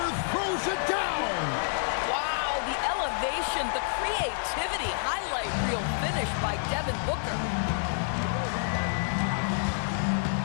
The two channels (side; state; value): right; silent; 59 dB below the other